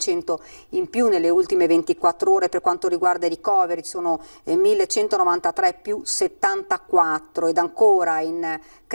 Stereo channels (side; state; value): both; inverted; correlation -1.00